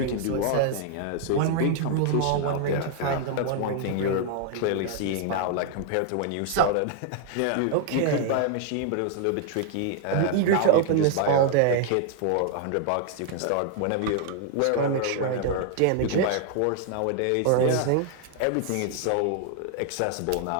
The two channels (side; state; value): both; different; correlation 0.00